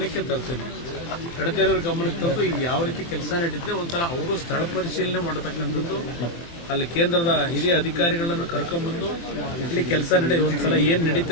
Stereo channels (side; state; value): right; late; 23 ms